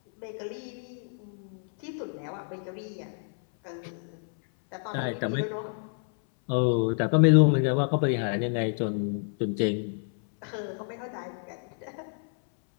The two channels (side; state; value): right; silent; 59 dB below the other